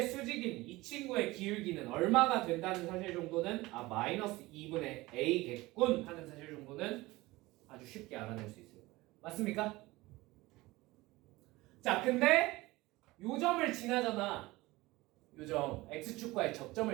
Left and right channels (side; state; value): left; quieter; 20.2 dB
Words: 수직인 이 친구의 기울기는 얼마가 된다는 사실 정도는 마이너스 2분의 a겠군 하는 사실 정도는 아주 쉽게 알아낼 수 있을 거예요. 맞습니까? 자, 근데 요 점을 지나잖아. 요 점 x축과의